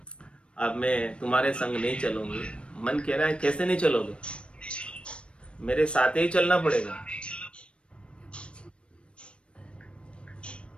अब मैं तुम्हारे संग नहीं चलूंगी। मन कह रहा है कैसे नहीं चलोगे, मेरे साथ ही चलना पड़ेगा।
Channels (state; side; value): late; right; 0.058 ms